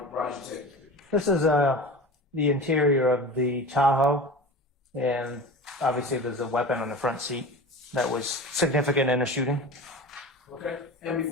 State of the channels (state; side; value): normal; both; correlation 0.32